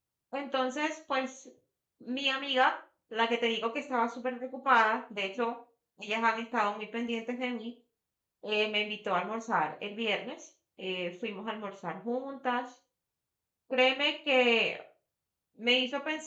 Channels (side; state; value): both; identical; correlation 1.00